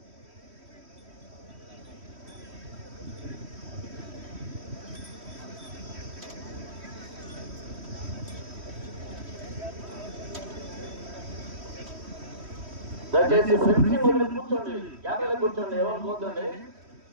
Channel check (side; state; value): left; late; 3.1 ms